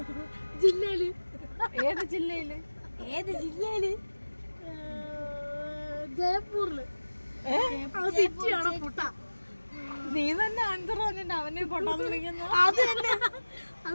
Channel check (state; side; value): inverted; both; correlation -1.00